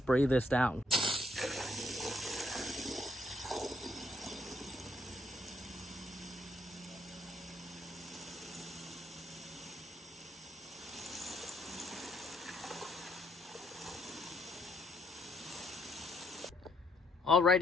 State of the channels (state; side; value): normal; both; correlation 0.70